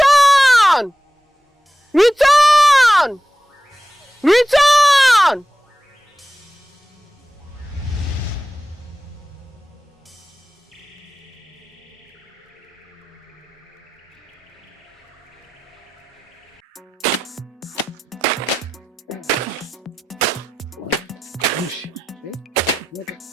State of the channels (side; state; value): both; normal; correlation 0.93